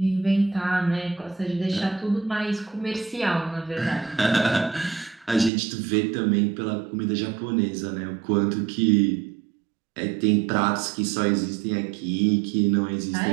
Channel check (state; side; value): drops out; left; at 5.5 s